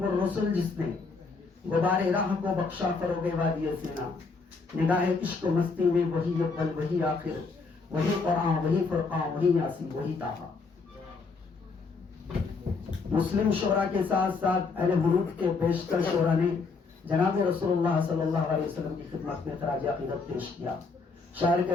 الرسل جس نے غبار راہ کو بخشا فروغ وادی سینا، نگاہ عشق و مستی میں وہی اول وہی آخر، وہی قرآن وہی فرقان وہی یاسین وہی طٰہٰ۔ مسلم شعراء کے ساتھ ساتھ اہل حنوف کے بیشتر شعراء نے جناب رسول اللہ صلی اللہ علیہ وسلم کی خدمت میں خراج عقیدت پیش کیا۔ شاعر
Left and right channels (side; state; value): right; quieter; 4.4 dB